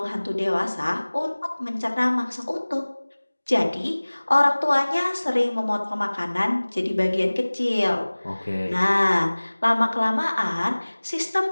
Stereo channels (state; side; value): inverted; both; correlation -1.00